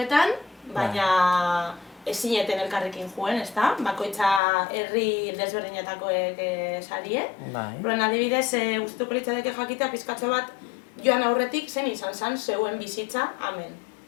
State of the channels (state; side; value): drops out; right; at 4.4 s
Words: baina ez zineten elkarrekin joen, ezta? Bakoitza herri desberdinetakoek sarie. Horren adibidez, gustatuko litzateke jakitea pizkatxo bat joan aurretik zen izan zen zeuen bizitza hemen,